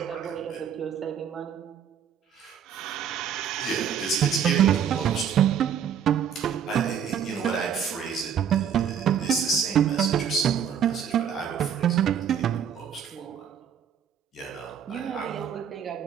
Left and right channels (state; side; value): quieter; left; 8.1 dB